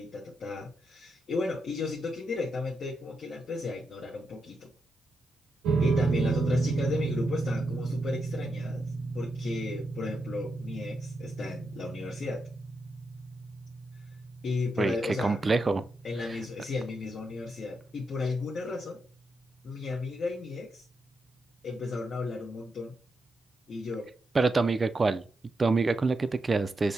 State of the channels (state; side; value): normal; both; correlation 0.85